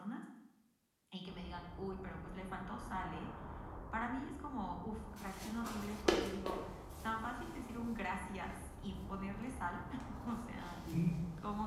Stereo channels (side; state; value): both; identical; correlation 1.00